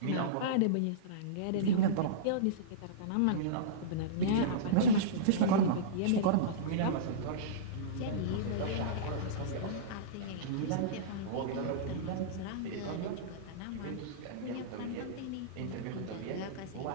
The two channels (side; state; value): both; different; correlation -0.05